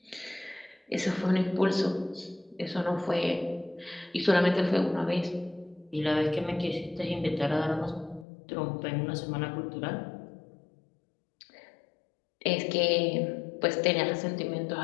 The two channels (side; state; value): right; drops out; at 8.2 s